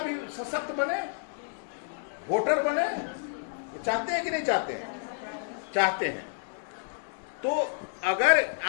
सशक्त बने, वोटर बने, चाहते हैं कि नहीं चाहते हैं? चाहते हैं। तो अगर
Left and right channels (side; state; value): right; silent; digital silence